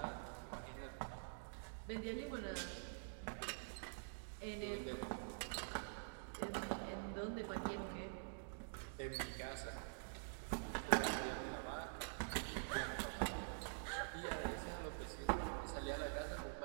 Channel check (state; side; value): silent; left; digital silence